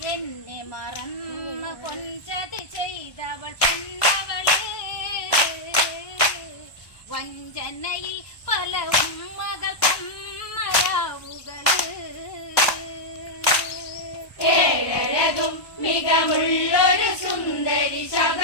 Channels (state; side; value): late; right; 1.2 ms